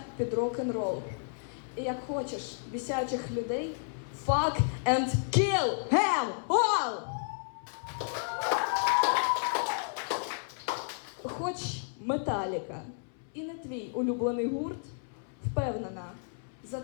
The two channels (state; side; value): silent; right; 56 dB below the other